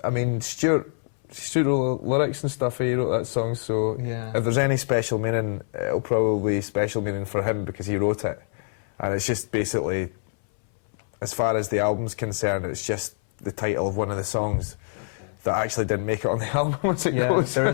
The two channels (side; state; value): right; silent; 60 dB below the other